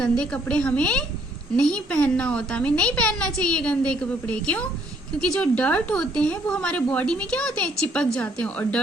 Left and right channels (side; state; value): both; normal; correlation 0.67